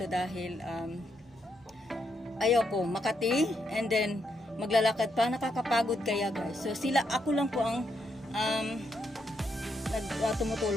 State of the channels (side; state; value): both; normal; correlation 0.79